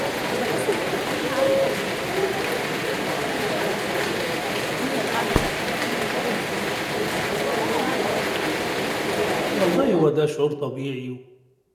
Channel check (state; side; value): identical; both; correlation 1.00